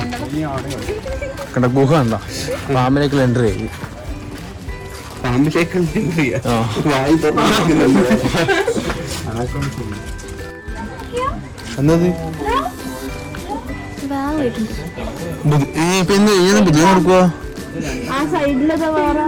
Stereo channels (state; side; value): identical; both; correlation 1.00